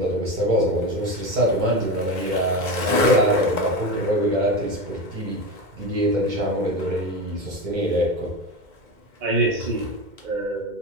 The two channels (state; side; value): late; left; 2.1 ms